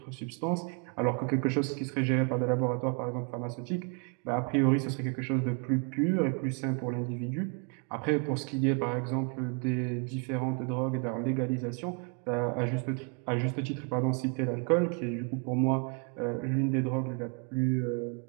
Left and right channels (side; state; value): left; quieter; 37.1 dB